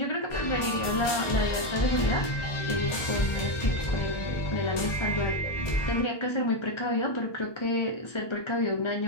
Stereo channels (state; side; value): late; right; 1.2 ms